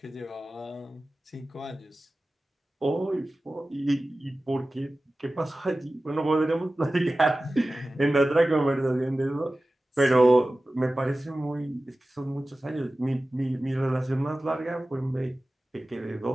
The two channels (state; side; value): normal; both; correlation 0.96